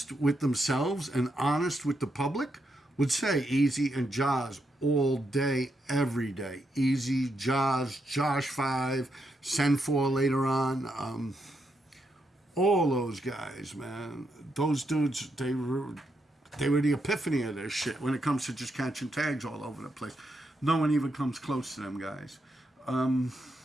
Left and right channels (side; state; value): both; normal; correlation 0.81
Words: with themselves and honest with the public would say Easy and Jazz all day, every day. Easy, Jazz, Josh 5, Send 4 later on. All those guys, man. Those dudes, they were the epiphany of their shit when it comes to just catching tags all over the place. No one even comes close to them guys. Talk